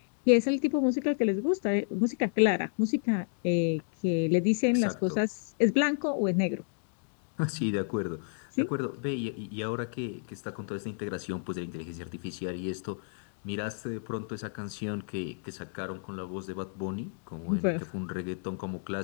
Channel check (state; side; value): silent; right; digital silence